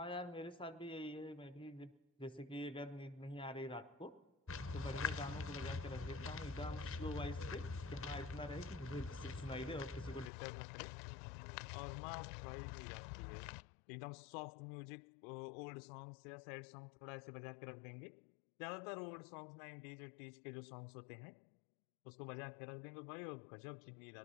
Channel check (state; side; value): drops out; right; at 10.3 s